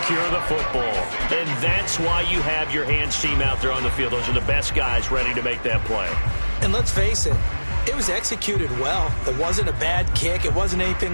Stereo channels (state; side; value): inverted; both; correlation -1.00